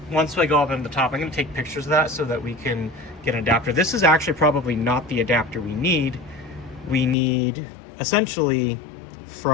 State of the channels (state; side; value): drops out; right; at 7.2 s